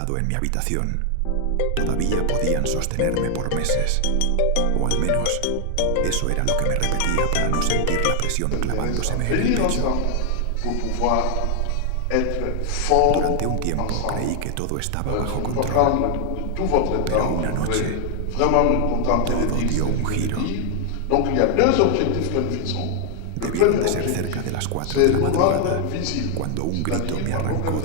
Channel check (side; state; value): both; different; correlation 0.00